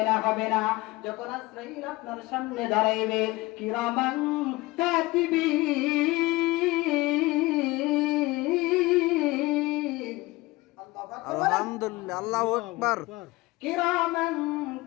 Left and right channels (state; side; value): quieter; right; 20.7 dB